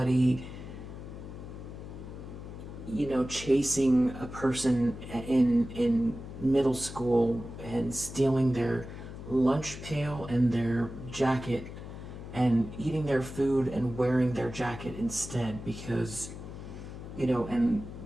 chasing a person in middle school and stealing their lunch pail and their jacket and eating their food and wearing their jacket instead because, and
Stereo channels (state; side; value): noise; left; hum, 11 dB below the sound